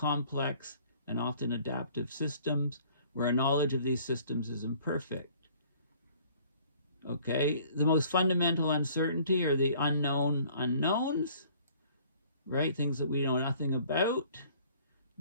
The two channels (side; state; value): both; inverted; correlation -0.56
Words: and often adaptive systems where our knowledge of these systems is imperfect. Okay, the most fundamental uncertainty are the unknown unknowns, right? Things that we know nothing about.